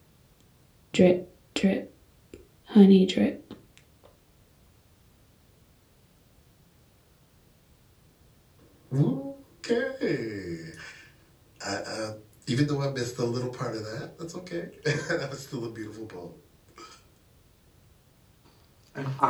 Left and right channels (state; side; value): identical; both; correlation 1.00